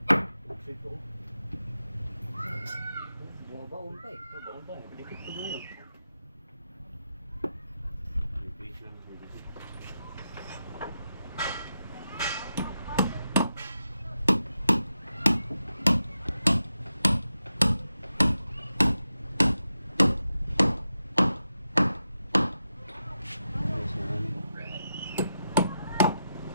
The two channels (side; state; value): both; inverted; correlation -0.88